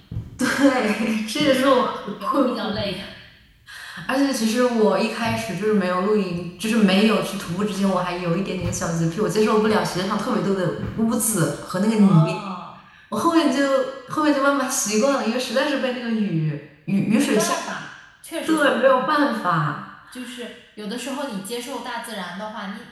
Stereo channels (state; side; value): identical; both; correlation 1.00